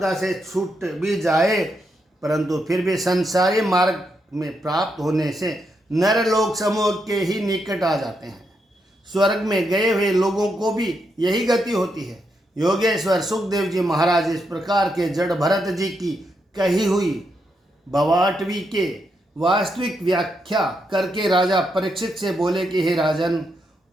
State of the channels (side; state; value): both; normal; correlation 0.81